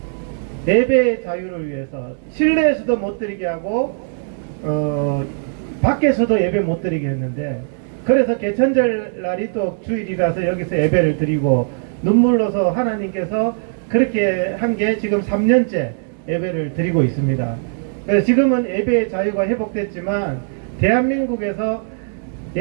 예배의 자유를 위해서 실내에서도 못 드리게 하고 밖에서도 예배 못 드리게 했는데, 그래서 개천절 날이 또 주일이라서 여기서 예배를 드리고 눈물로서 하나님께서 그렇게 한 게 지금 3년째 예배를 드리고 있습니다. 그래서 지금은 예배의 자유가 회복됐지만 대한민국에서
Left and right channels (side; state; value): left; silent; digital silence